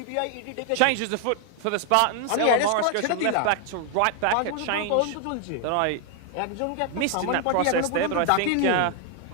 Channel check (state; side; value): different; both; correlation 0.00